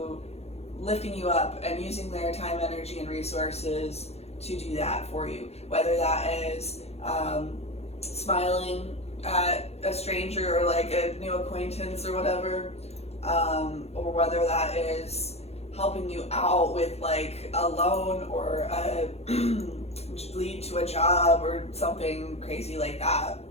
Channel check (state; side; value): late; right; 0.30 ms